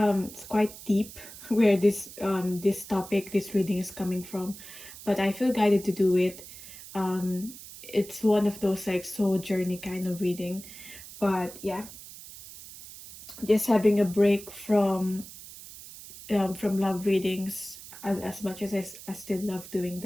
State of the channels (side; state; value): right; noise; hiss, 15 dB below the sound